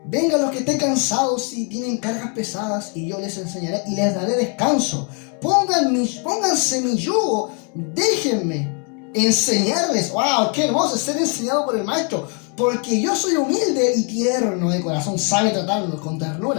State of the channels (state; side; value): quieter; right; 38.0 dB